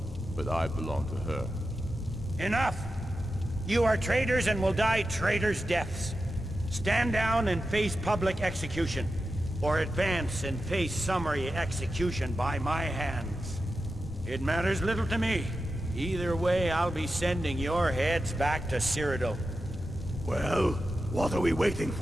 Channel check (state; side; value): normal; both; correlation 0.91